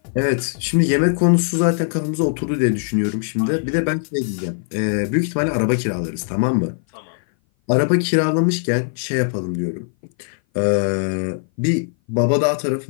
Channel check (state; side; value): silent; right; 58 dB below the other